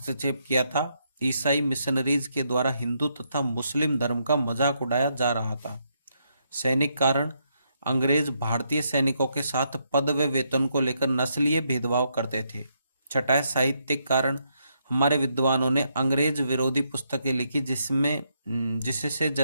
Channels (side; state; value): both; inverted; correlation -0.78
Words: किया था। ईसाई मिशनरीज के द्वारा हिंदू तथा मुस्लिम धर्म का मजाक उड़ाया जा रहा था। सैनिक कारण, अंग्रेज भारतीय सैनिकों के साथ पद व वेतन को लेकर नस्लीय भेदभाव करते थे। छठा है साहित्यिक कारण, हमारे विद्वानों ने अंग्रेज विरोधी पुस्तकें लिखी जिससे